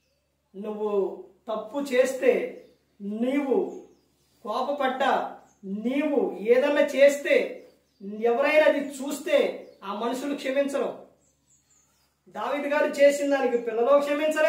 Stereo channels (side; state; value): both; identical; correlation 1.00